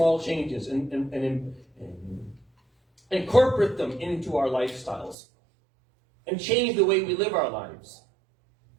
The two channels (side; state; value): left; drops out; at 5.2 s